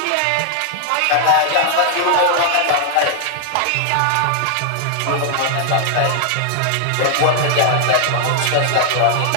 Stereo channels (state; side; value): different; both; correlation -0.01